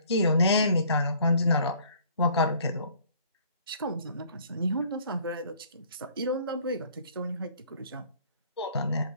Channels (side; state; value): both; inverted; correlation -0.57